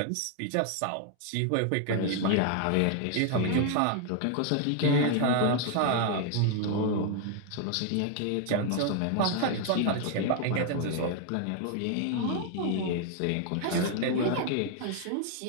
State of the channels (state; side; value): different; both; correlation 0.00